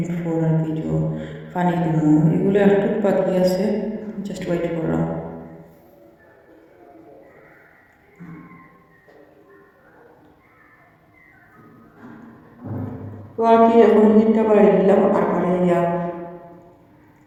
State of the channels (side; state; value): both; identical; correlation 1.00